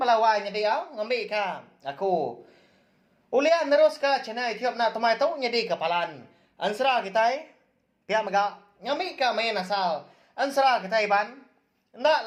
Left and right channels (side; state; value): both; identical; correlation 1.00